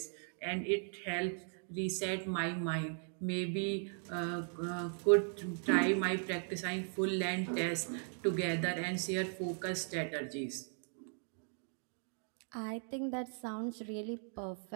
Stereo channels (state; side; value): silent; left; 52 dB below the other